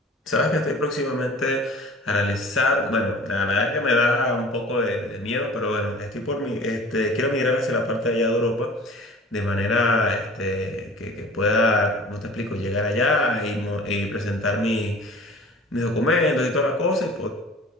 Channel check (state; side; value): normal; both; correlation 0.44